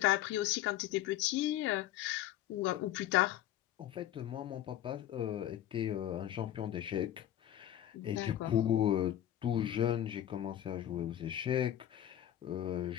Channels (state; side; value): quieter; right; 12.2 dB